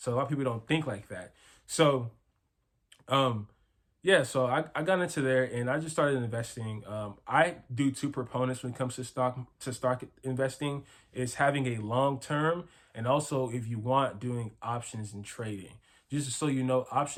a lot of people don't think like that. So yeah, so I got into there and I just started investing. I do two proponents when it comes to stock investing, is having a long term, and also if you want, doing options and trading. Just so you know,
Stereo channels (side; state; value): both; identical; correlation 1.00